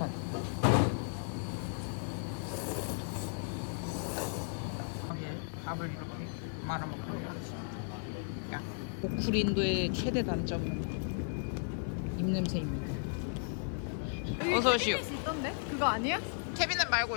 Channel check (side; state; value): right; silent; 55 dB below the other